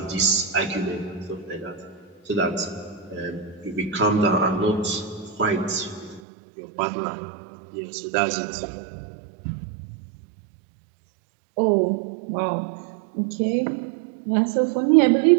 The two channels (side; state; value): left; drops out; at 6.2 s